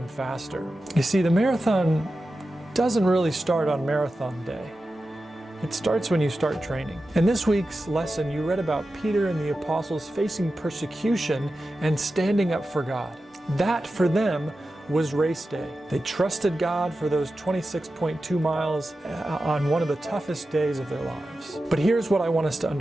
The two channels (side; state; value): both; normal; correlation 0.93